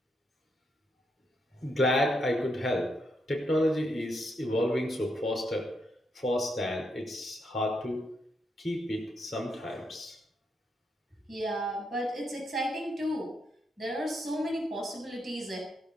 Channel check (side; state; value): both; normal; correlation 0.79